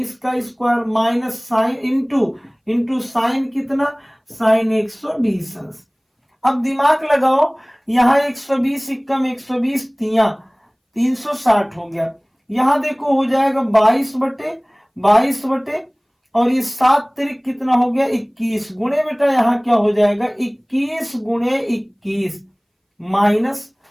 का square minus sine into sine कितना साइन 120 अंश। अब दिमाग लगाओ, यहाँ 120 इक्कम 120 तिया 360 हो गया, यहां देखो हो जाएगा 22/22 और ये 7 तिरिक कितना हो गया 21 गुणे बेटा यहाँ क्या हो जाएगा 21 गुणे 21 माइनस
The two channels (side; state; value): both; identical; correlation 1.00